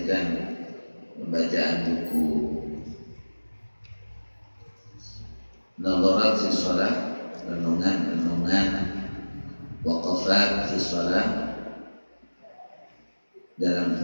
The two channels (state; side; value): inverted; both; correlation -1.00